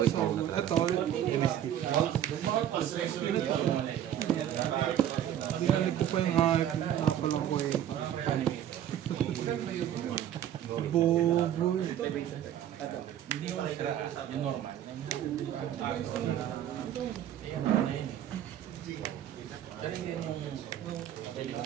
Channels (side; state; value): left; quieter; 10.9 dB